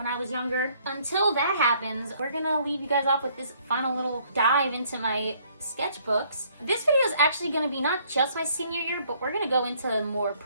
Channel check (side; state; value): both; inverted; correlation -0.64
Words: I was younger. Until that happens, we're gonna leave you guys off with this final little dive into my sketchbooks. This video is actually going to be not just my senior year, but we're going to go into more